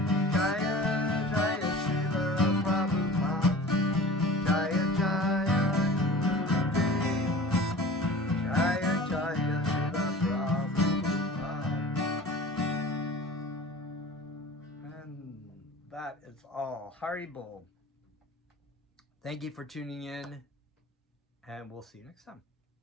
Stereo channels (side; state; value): both; normal; correlation 0.40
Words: Jaya Jaya Srila Prabhupada, Jaya Jaya Gurudev, Jaya Jaya Srila Prabhupada. And that is all. Haribol. Thank you for tuning in, and we'll see you next time.